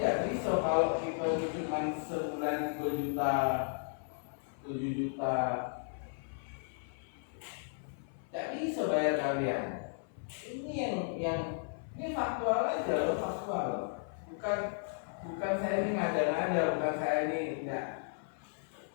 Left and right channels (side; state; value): right; silent; 54 dB below the other